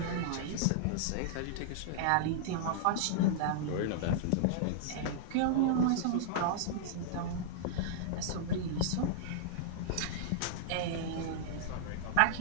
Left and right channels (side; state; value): both; different; correlation -0.01